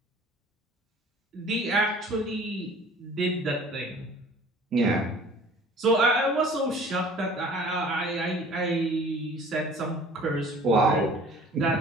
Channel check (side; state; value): both; normal; correlation 0.48